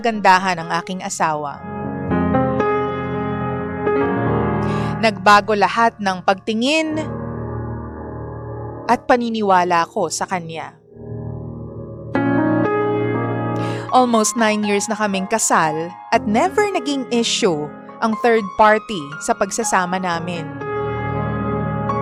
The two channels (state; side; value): identical; both; correlation 1.00